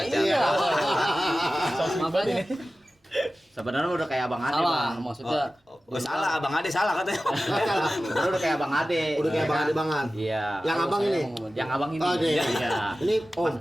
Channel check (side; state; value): both; normal; correlation 0.95